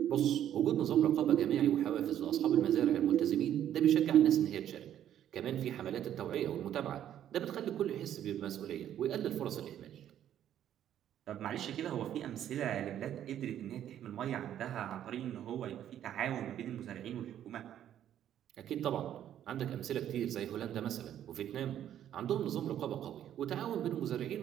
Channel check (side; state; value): left; quieter; 10.8 dB